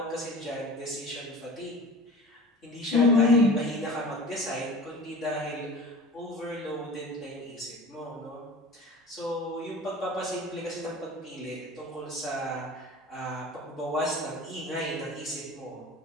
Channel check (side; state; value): both; normal; correlation 0.38